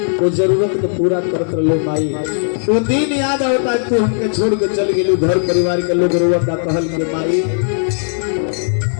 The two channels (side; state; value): right; silent; digital silence